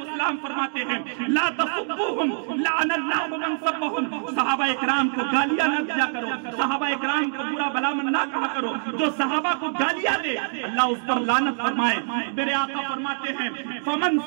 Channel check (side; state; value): left; silent; digital silence